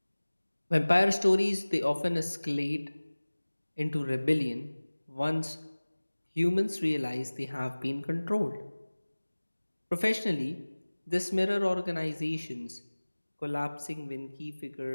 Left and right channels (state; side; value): inverted; both; correlation -1.00